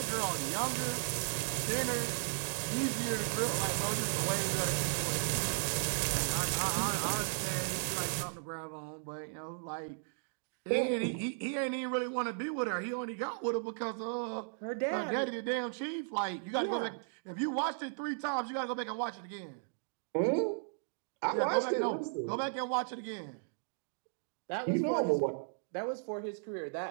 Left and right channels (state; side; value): silent; left; digital silence